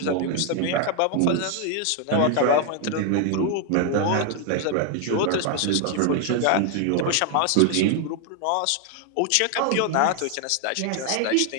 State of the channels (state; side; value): different; both; correlation 0.01